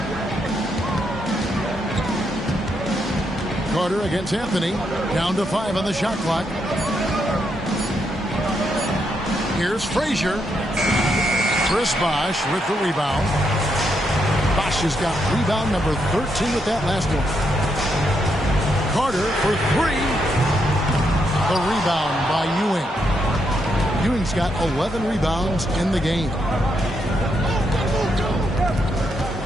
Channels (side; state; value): both; normal; correlation 0.79